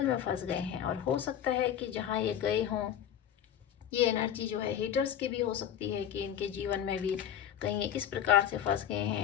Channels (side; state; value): right; quieter; 9.8 dB